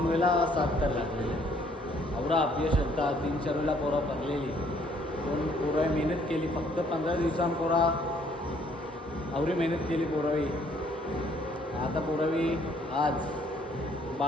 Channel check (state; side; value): normal; both; correlation 0.64